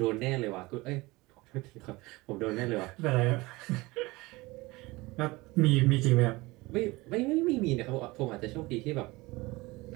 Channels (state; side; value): quieter; left; 22.0 dB